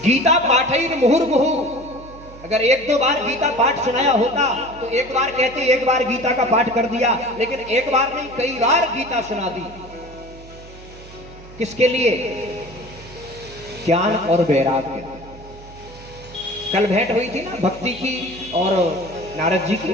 गीता पाठैः मुहुर्मुहु, अगर एक दो बार गीता पाठ सुनाया होता तो एक बार कहते एक बार गीता का पाठ कर दिया, लेकिन एक बार नहीं कई बार गीता सुना दी। किसके लिए? ज्ञान और वैराग्य। कल भेंट हुई थी ना भक्ति की और नारद जी की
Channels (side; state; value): right; noise; hum, 18 dB below the sound